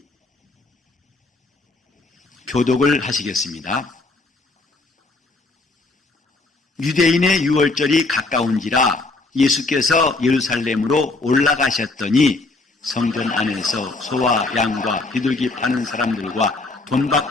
교독을 하시겠습니다. 유대인의 유월절이 가까운지라 예수께서 예루살렘으로 올라가셨더니 성전 안에서 소와 양과 비둘기 파는 사람들과 돈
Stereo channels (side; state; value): right; quieter; 3.3 dB